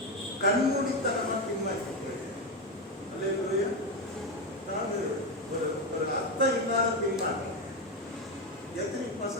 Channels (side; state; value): both; normal; correlation 0.11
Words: கண்மூடித்தனமாக பின்வாங்கி போயிடுது. அல்லேலூயா. அதாவது ஒரு அர்த்தம் இல்லாத பின்வாங்க. எத்தனை